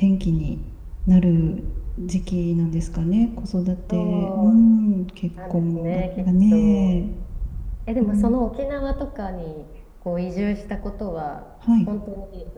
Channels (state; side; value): identical; both; correlation 1.00